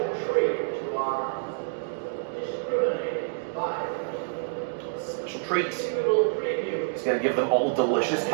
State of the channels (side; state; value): left; silent; digital silence